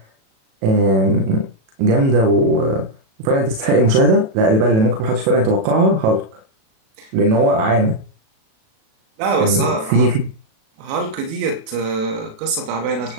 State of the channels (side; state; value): left; late; 37 ms